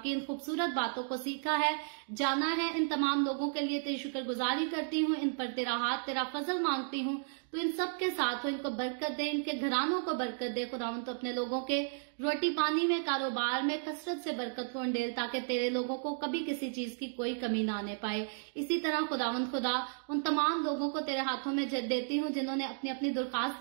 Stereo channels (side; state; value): left; silent; digital silence